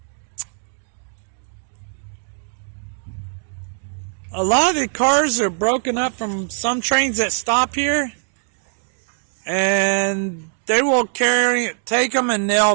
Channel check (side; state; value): left; silent; 58 dB below the other